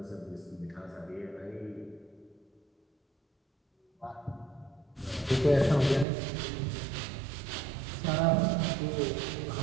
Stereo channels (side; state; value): left; drops out; at 6.1 s